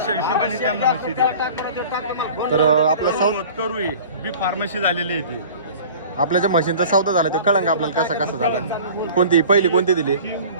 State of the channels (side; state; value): both; inverted; correlation -0.43